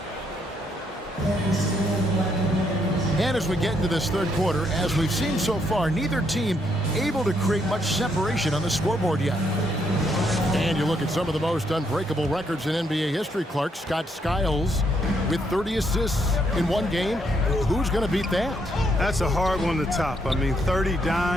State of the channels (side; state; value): both; normal; correlation 0.74